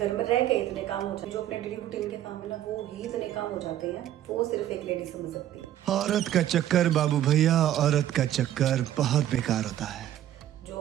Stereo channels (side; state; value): left; quieter; 12.1 dB